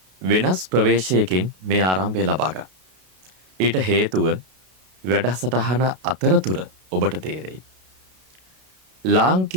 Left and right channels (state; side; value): late; left; 32 ms